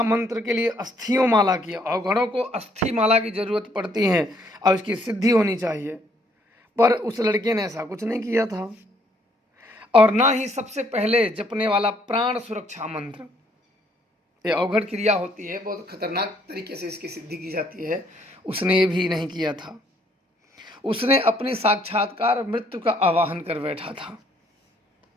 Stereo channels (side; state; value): both; normal; correlation 0.67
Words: मंत्र के लिए अस्थियों माला की, अवघड़ों को अस्थि माला की जरूरत पड़ती है और उसकी सिद्धि होनी चाहिए। पर उस लड़के ने ऐसा कुछ नहीं किया था, और ना ही सबसे पहले जपने वाला प्राण सुरक्षा मंत्र, ये अवघड़ क्रिया होती है, बहुत खतरनाक तरीके से इसकी सिद्धि की जाती है, उसने ये भी नहीं किया था। उसने अपनी साक्षात्कार मृत्यु का आवाहन कर बैठा था।